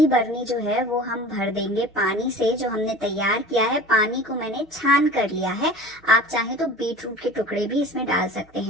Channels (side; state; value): both; normal; correlation 0.41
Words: बर्नी जो है वो हम भर देंगे पानी से जो हमने तैयार किया है। पानी को मैंने छान कर लिया है, आप चाहे तो बीट रूट के टुकड़े भी इसमें डाल सकते